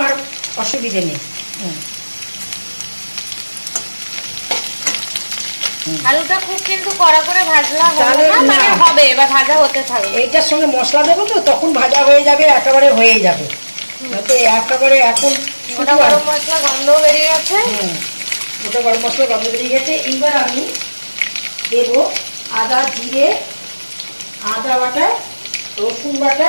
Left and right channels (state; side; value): inverted; both; correlation -1.00